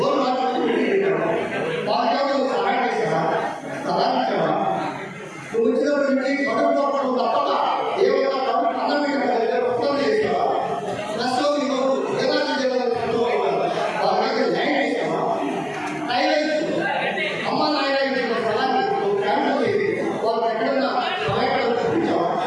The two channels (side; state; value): both; identical; correlation 1.00